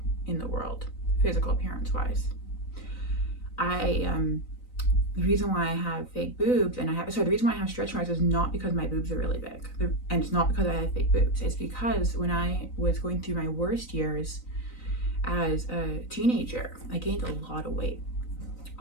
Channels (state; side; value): late; right; 3.9 ms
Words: in the world, physical appearance wise. The reason why I have fake boobs and the reason why I have stretch marks is not because my boobs are really big. And it's not because I have fake boobs. It's because when I was going through my worst years as a teenager, I gained a lot of weight.